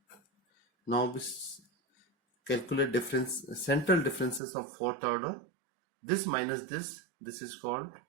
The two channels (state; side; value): drops out; left; at 4.4 s